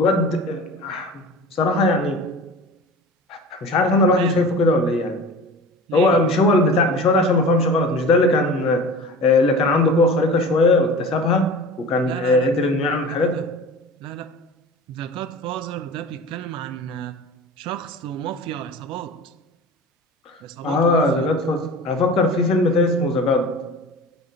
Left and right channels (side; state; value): both; normal; correlation 0.37